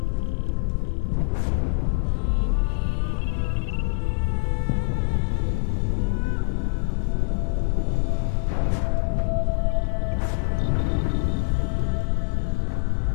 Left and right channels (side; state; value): right; silent; digital silence